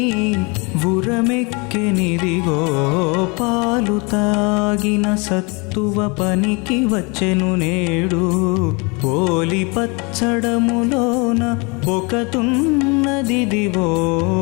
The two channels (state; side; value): quieter; right; 29.6 dB